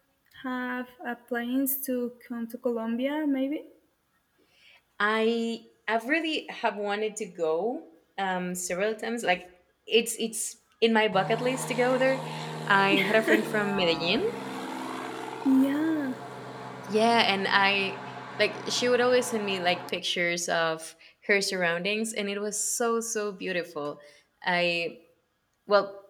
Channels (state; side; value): identical; both; correlation 1.00